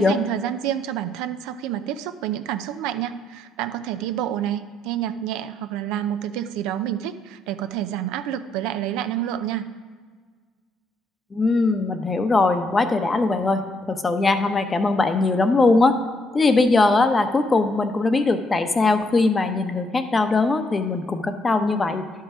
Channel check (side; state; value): both; normal; correlation 0.74